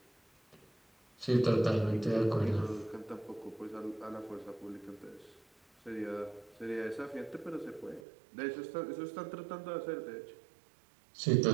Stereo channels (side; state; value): left; drops out; at 8.0 s